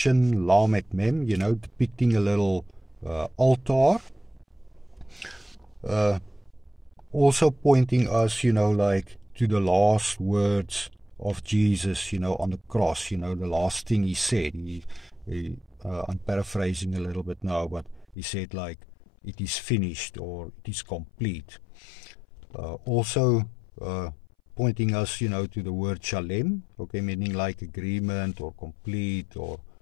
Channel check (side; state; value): right; drops out; at 18.2 s